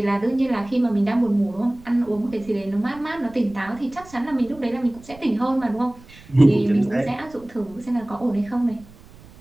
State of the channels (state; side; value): noise; right; rumble, 22 dB below the sound